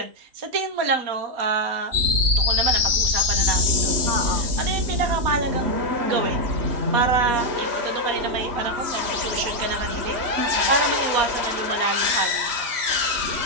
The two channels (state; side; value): late; left; 3.1 ms